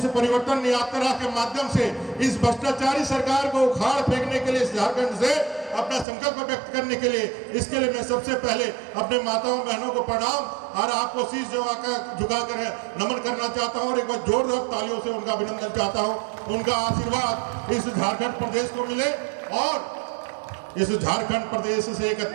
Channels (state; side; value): drops out; left; at 6.1 s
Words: परिवर्तन यात्रा के माध्यम से इस भ्रष्टाचारी सरकार को उखाड़ फेंकने के लिए इस झारखंड से अपना संकल्प व्यक्त करने के लिए, इसके लिए मैं सबसे पहले अपने माताओं बहनों को प्रणाम और आपको शीश झुकाकर नमन करना चाहता हूँ और एक बार जोरदार तालियों से उनका अभिनंदन चाहता हूँ। उनका आशीर्वाद इस झारखंड प्रदेश को मिले और इस झारखंड प्रदेश से एक